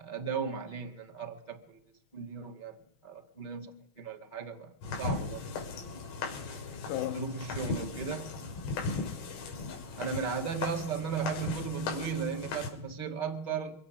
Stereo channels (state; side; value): late; right; 6.3 ms